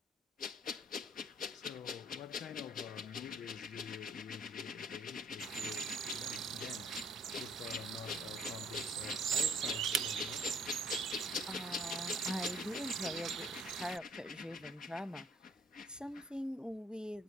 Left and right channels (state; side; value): normal; both; correlation 0.58